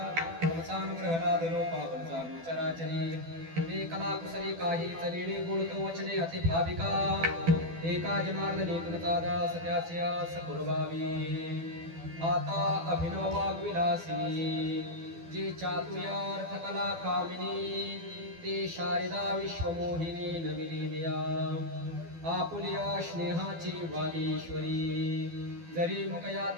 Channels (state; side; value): late; left; 12 ms